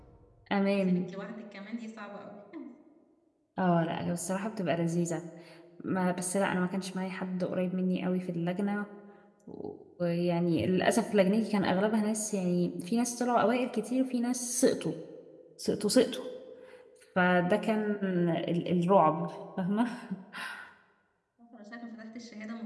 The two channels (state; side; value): identical; both; correlation 1.00